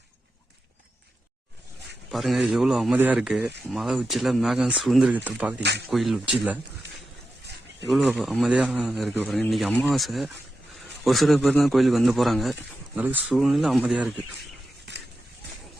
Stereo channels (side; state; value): both; normal; correlation 0.90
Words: பாருங்க எவ்வளோ அமைதியாக இருக்கு. மலை உச்சியில் மேகம் சுழ்ந்துருக்கிறத பார்க்குறீங்க. கோயில் உச்சியில் எவ்வளோ அமைதியாக இருக்கு பாருங்க. இன்னைக்கு அமாவாசை, ஒரு சில பேர் தான் கோயிலுக்கு வந்து போகிறாங்க. அளவுக்கு சூழ்நிலை அமைதியாக இருக்கு.